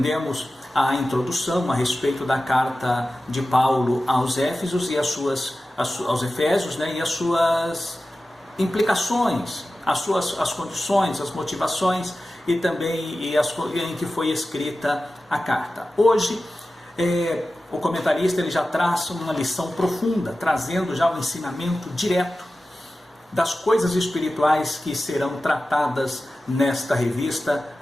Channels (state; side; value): normal; both; correlation 0.95